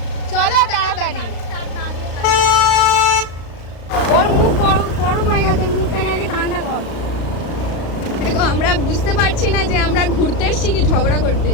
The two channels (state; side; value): late; right; 35 ms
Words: চলো তাড়াতাড়ি। ওর মুখ গরম হয়ে গেছে, মুখটাকে আগে ঠান্ডা কর। দেখো আমরা বুঝতে পারছি না যে আমরা ঘুরতে এসেছি কি ঝগড়া করতে